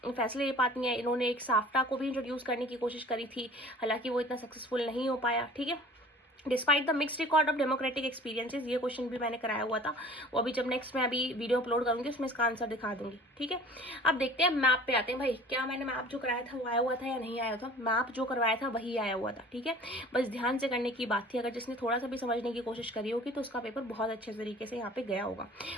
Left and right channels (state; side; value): normal; both; correlation 0.46